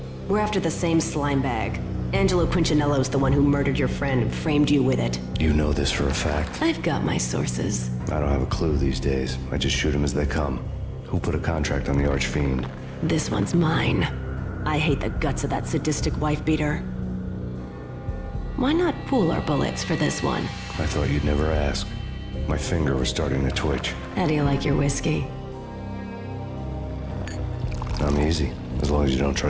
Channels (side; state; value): both; identical; correlation 1.00